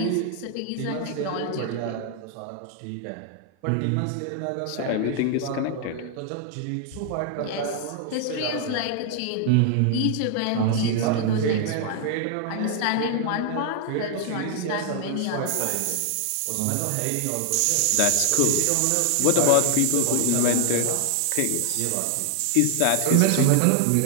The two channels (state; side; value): different; both; correlation 0.00